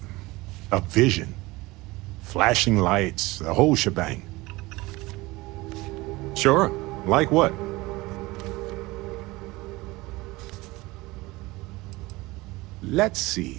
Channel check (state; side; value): quieter; left; 21.2 dB